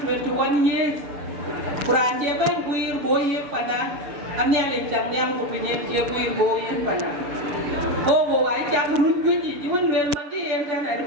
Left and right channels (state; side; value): late; left; 7.0 ms